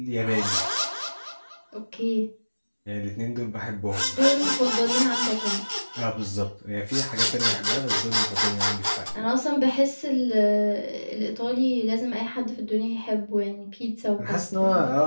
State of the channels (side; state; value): both; inverted; correlation -1.00